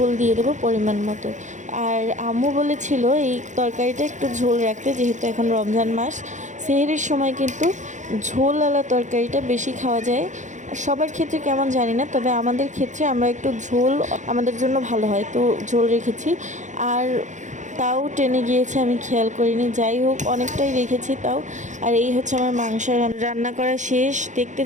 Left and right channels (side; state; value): left; late; 0.35 ms